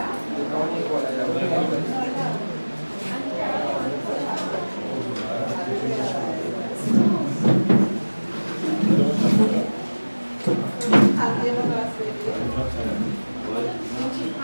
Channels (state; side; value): inverted; both; correlation -1.00